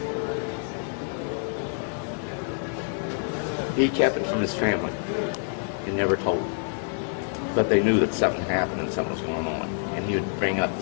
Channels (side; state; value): right; silent; 60 dB below the other